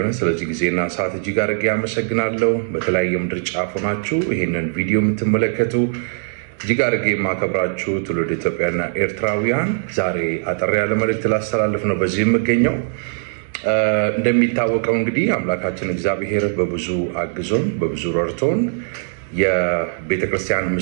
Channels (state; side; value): silent; left; digital silence